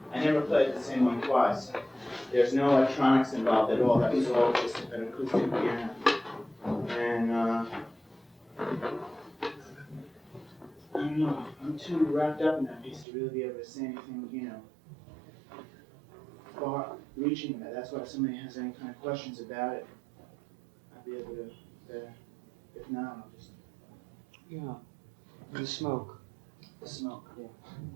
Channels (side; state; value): left; drops out; at 13.1 s